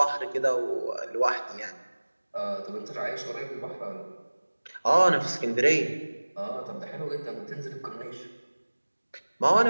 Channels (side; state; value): both; inverted; correlation -1.00